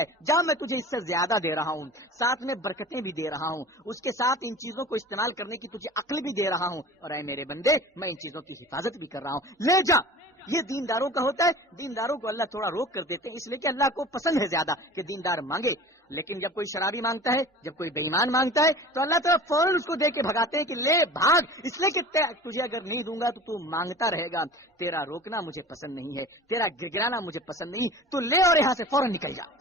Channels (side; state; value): both; normal; correlation 0.39